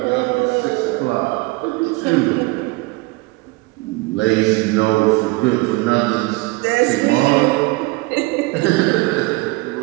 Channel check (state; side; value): quieter; left; 23.6 dB